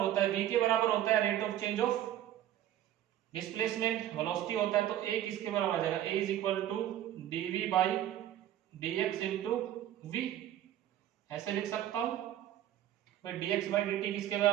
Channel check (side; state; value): left; quieter; 12.0 dB